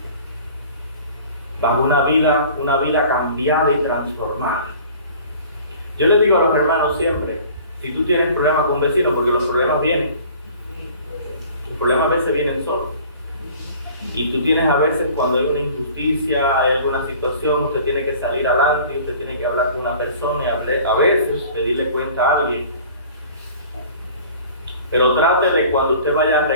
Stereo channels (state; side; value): inverted; both; correlation -0.47